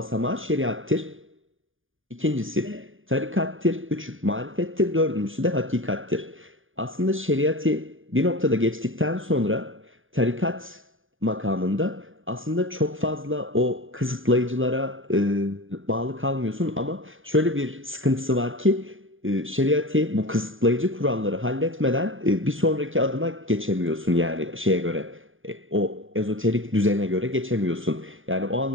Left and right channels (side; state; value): left; late; 0.58 ms